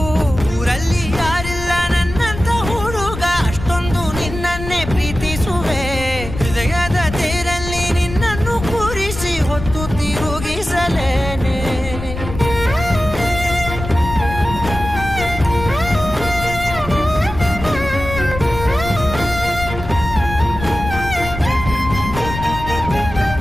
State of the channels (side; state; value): left; noise; rumble, 9 dB below the sound